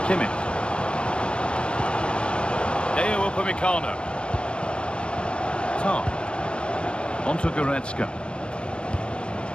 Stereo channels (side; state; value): right; late; 0.056 ms